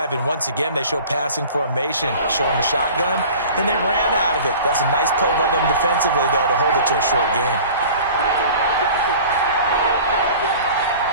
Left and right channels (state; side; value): inverted; both; correlation -0.42